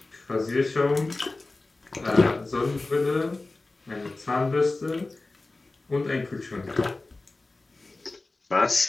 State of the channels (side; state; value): right; quieter; 3.2 dB